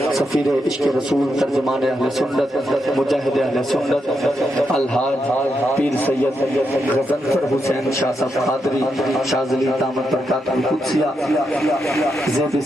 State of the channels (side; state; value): both; normal; correlation 0.83